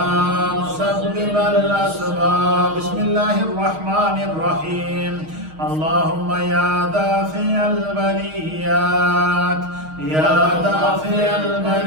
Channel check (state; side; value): late; left; 6.4 ms